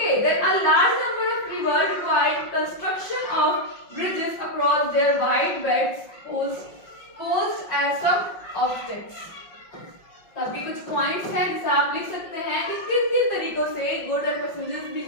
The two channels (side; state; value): right; late; 5.5 ms